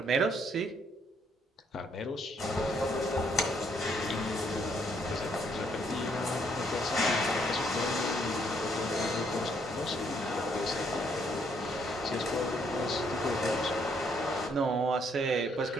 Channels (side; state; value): both; normal; correlation 0.70